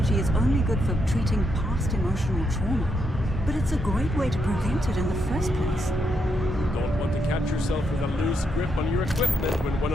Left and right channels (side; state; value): both; normal; correlation 0.80